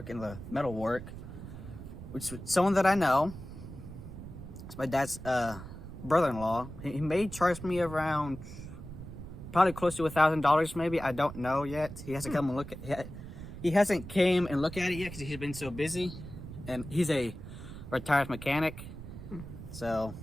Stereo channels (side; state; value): right; noise; rumble, 12 dB below the sound